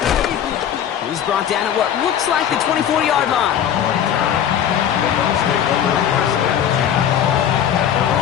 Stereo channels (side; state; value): right; quieter; 9.5 dB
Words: He's brought down at what looks like the 24-yard line.